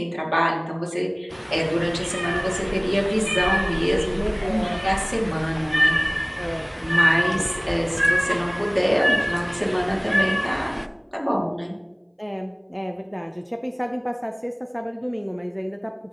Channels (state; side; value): identical; both; correlation 1.00